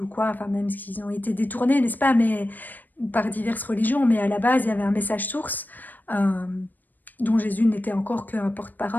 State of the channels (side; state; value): right; late; 0.088 ms